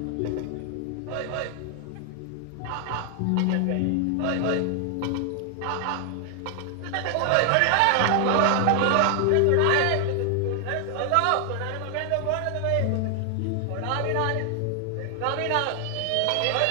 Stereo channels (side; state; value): both; different; correlation 0.00